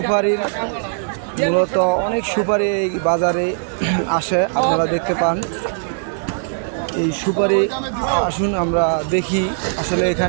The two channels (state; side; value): silent; left; 66 dB below the other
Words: মূলত অনেক সুপারি এই বাজারে আসে, আপনারা দেখতে পান। এই সুপারি আসুন আমরা দেখি আসলে